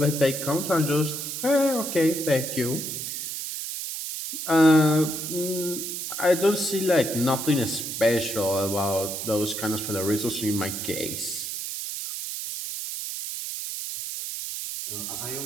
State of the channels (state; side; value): noise; right; hiss, 5 dB below the sound